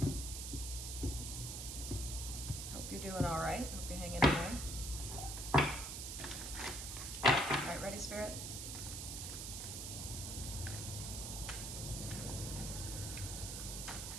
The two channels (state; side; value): noise; right; hiss, 5 dB below the sound